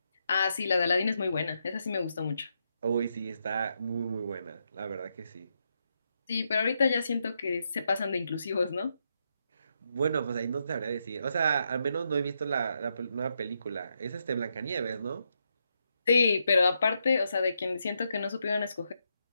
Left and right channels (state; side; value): inverted; both; correlation -0.81